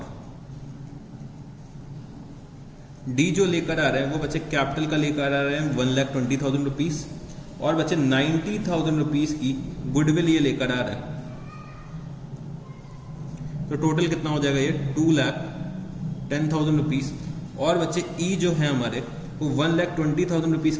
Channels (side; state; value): both; identical; correlation 1.00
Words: D जो लेकर आ रहे हैं वो बच्चे कैपिटल का लेकर आ रहे हैं 1,20,000 रुपीज और बच्चे 90,000 रुपीज की गुडविल ये लेकर आ रहे हैं। तो टोटल कितना हो जाएगा ये 2,10,000 रुपीज। और बच्चे ई जो है हमारे वो 1,20,000 रुपीज